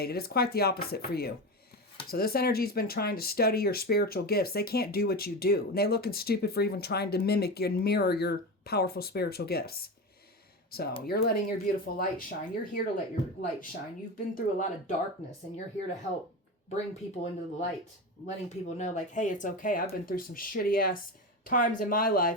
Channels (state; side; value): normal; both; correlation 0.22